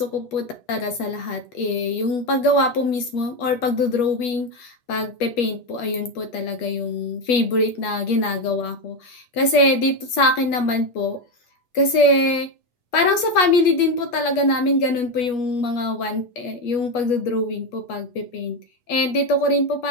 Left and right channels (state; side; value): late; right; 8.3 ms